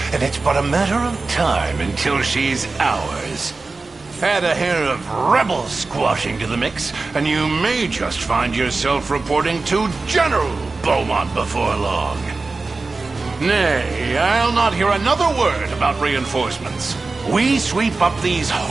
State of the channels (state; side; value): quieter; left; 3.8 dB